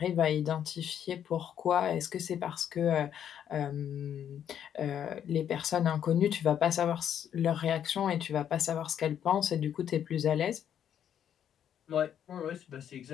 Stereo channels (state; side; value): quieter; right; 9.4 dB